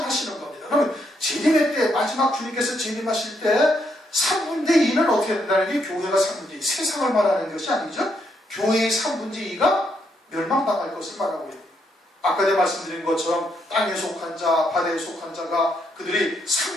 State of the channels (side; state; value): both; normal; correlation 0.76